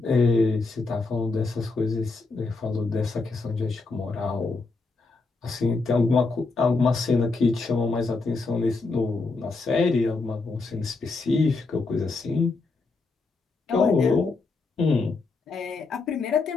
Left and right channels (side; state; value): right; quieter; 3.8 dB